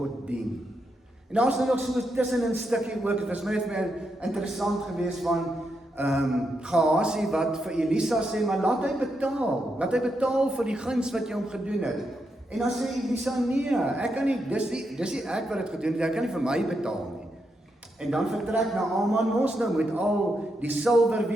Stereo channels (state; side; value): normal; both; correlation 0.83